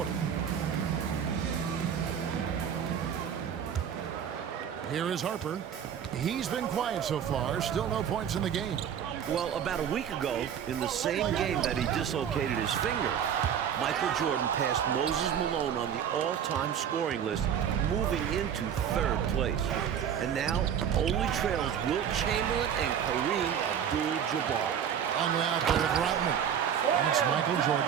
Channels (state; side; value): quieter; left; 8.6 dB